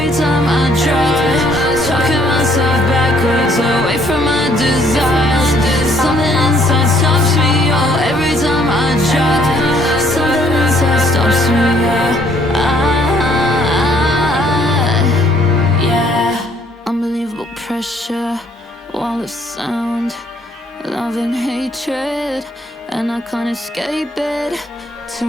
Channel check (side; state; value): both; normal; correlation 0.64